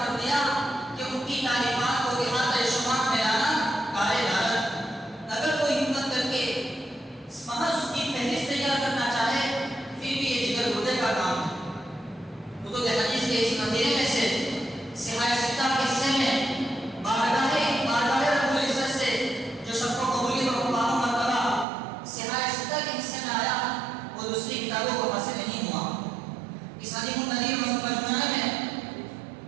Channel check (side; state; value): left; drops out; at 21.7 s